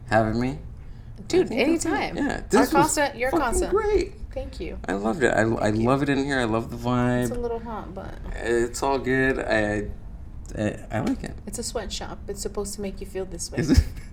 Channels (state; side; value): identical; both; correlation 1.00